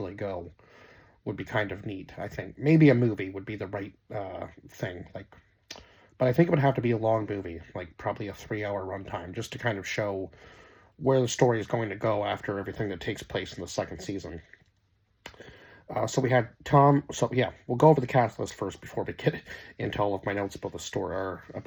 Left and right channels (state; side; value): identical; both; correlation 1.00